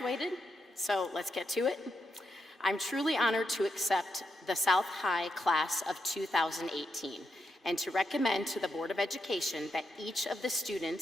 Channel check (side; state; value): both; normal; correlation 0.83